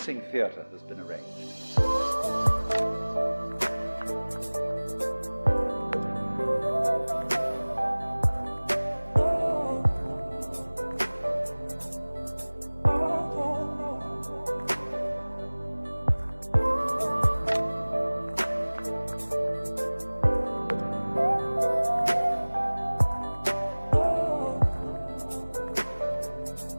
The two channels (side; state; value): both; inverted; correlation -1.00